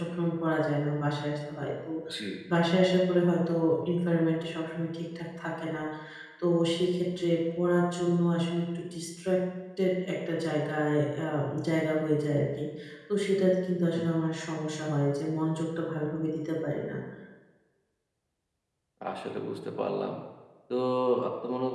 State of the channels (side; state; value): both; identical; correlation 1.00